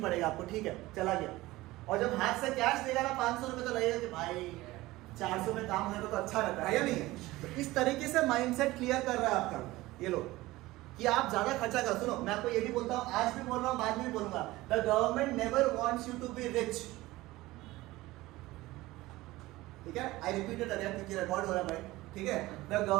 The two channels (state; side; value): quieter; left; 18.7 dB